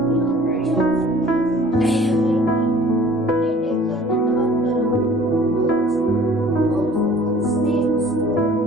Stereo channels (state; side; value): normal; both; correlation 0.51